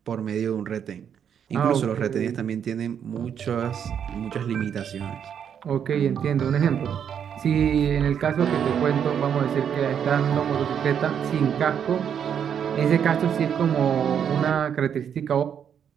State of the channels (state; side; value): quieter; left; 8.2 dB